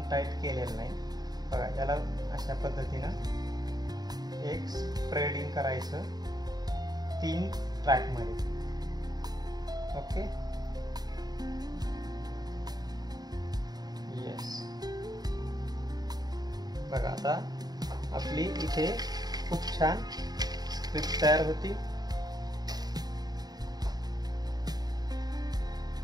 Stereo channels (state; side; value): late; left; 0.19 ms